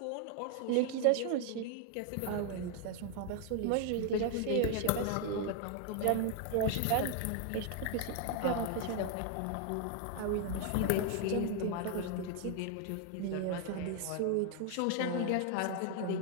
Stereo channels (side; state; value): both; different; correlation 0.00